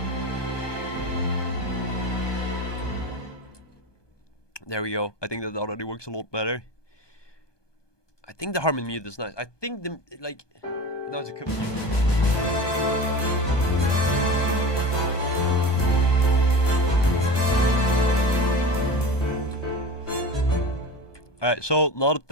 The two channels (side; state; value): right; late; 1.2 ms